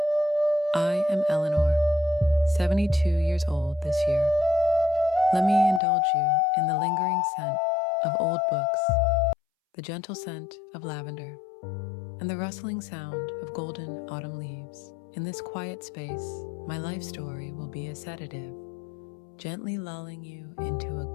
I am Eleanor, 72 years old this year. Let me indulge you in the lingering scent of old books, the gentle scent of lavender, and the rustling sound of golden autumn leaves. In this quiet space, my life story will be a sedative, gently lulling you into a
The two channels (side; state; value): right; drops out; at 5.8 s